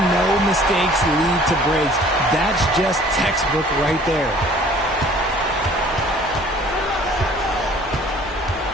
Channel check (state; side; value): normal; both; correlation 0.52